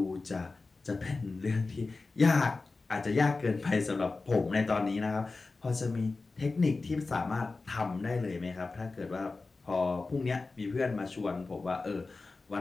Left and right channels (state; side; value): quieter; right; 3.7 dB